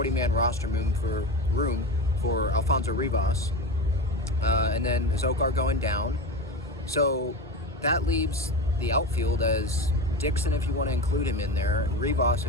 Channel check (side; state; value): both; normal; correlation 0.24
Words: roster room for Alfonso Rivas. And then Azocar going down. So that leaves the outfield as Dixon, if you want to include him in there, Rivas,